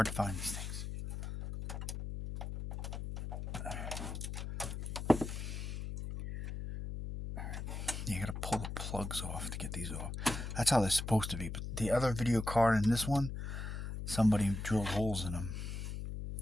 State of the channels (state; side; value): noise; left; hum, 5 dB below the sound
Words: to find, these things. You got to pull the plugs off to get these off. That's how they're supposed to be. But the other video card in this one, somebody drilled holes in them.